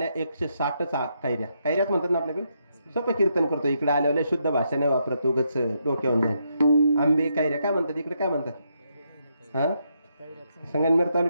160 कैऱ्या. कैऱ्याच म्हणतात ना आपल्याकडे. सोपं कीर्तन करतो. इकडे आल्यावर शुद्ध भाषा नाही वापरत, उगच डोक्यावरून जाईल. आंबे कैऱ्या काय म्हणतात इकडे, काय म्हणतात. हा, संगमनेर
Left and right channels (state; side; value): inverted; both; correlation -0.79